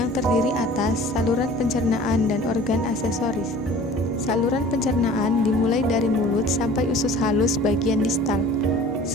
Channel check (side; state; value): both; normal; correlation 0.46